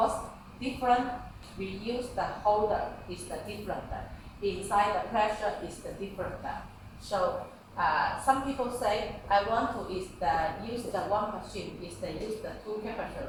different. We use the holder is the different. Inside the pressure is the different. So some people say I want to use the one machine is the use the 2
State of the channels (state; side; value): identical; both; correlation 1.00